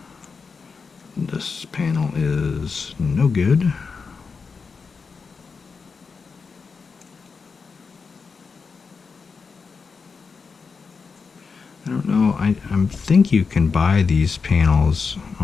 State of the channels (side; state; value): right; quieter; 5.1 dB